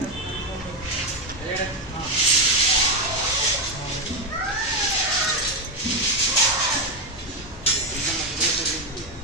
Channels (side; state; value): both; normal; correlation 0.09